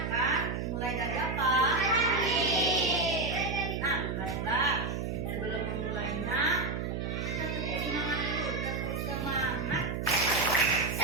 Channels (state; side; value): noise; right; hum, 3 dB below the sound